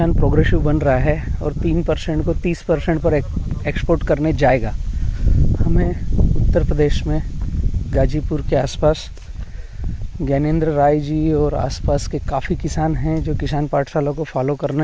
प्रोग्रेसिव बन रहा है और 3% को 30% पर एक्सपोर्ट करने जाएगा। हमें उत्तर प्रदेश में गाजीपुर के आसपास ज्ञानेंद्र राय जी और आसपास के काफ़ी किसान हैं जो किसान पाठशाला को फॉलो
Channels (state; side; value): identical; both; correlation 1.00